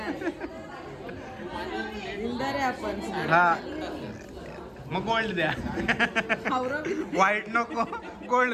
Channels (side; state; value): both; identical; correlation 1.00